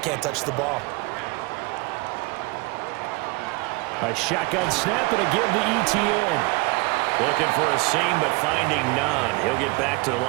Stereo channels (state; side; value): quieter; left; 25.8 dB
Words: touch the ball. A shotgun snap and a give to ETN. Looking for a seam, but finding none. He'll get back to the